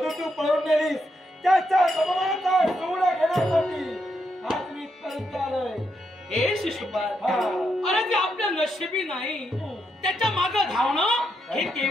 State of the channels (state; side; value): normal; both; correlation 0.81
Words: तू पळून नेलीस. त्याच्या अपमानाचा सूड घेण्यासाठी आज मी इथपर्यंत आलोय. हे शिशुपाल, अरे ते आपल्या नशिबी नाही. त्याच्या मागे धावणं हे